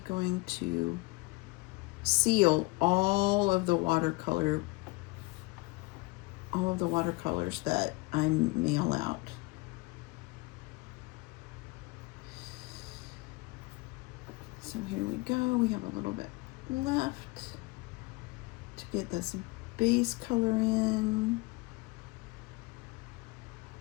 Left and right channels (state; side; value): quieter; right; 24.1 dB